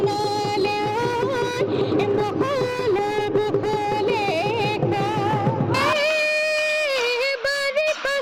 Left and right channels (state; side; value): identical; both; correlation 1.00